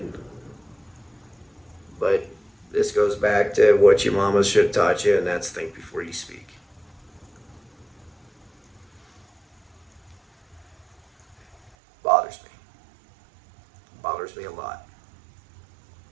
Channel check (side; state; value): left; drops out; at 11.7 s